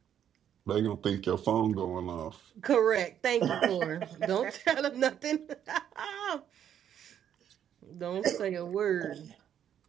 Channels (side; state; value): left; quieter; 9.6 dB